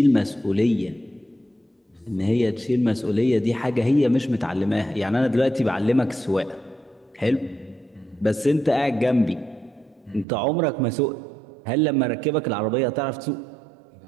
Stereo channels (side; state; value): left; drops out; at 10.2 s